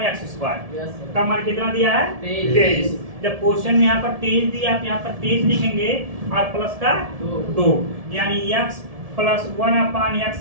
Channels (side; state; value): left; late; 1.7 ms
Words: का मान कितना दिया है? 23। जब क्वेश्चन में यहाँ पर 23 दिया तो यहाँ पर 23 लिखेंगे और प्लस का 2, यानी x + 1/(x)